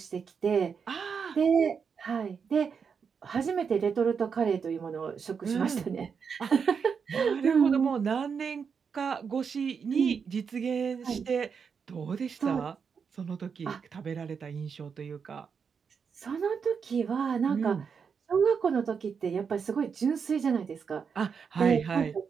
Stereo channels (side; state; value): left; quieter; 6.3 dB